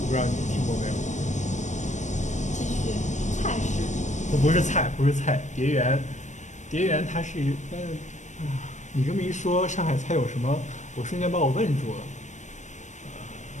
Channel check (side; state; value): right; late; 0.35 ms